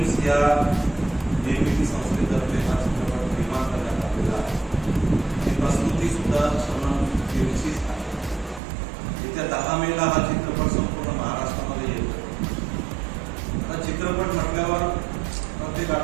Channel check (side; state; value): left; drops out; at 8.6 s